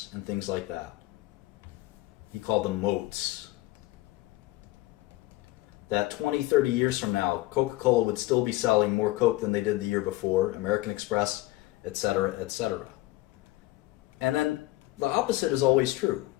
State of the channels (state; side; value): quieter; right; 18.5 dB